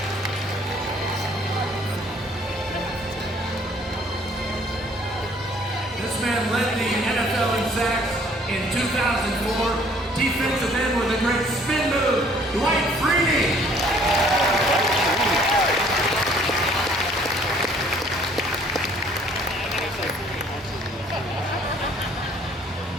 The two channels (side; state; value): both; normal; correlation 0.59